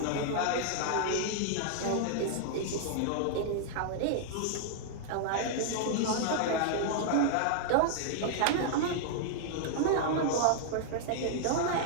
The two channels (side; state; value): both; different; correlation -0.01